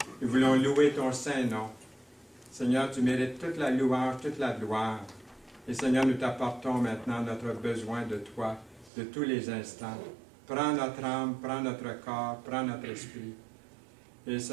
Nous voulons louer ton saint nom. Seigneur, tu mérites toute la louange, toute la gloire. Et Seigneur, nous t'apportons maintenant notre besoin de toi, de tous les instants. Prends notre âme, prends notre corps, prends notre esprit. Et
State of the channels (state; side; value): drops out; left; at 8.9 s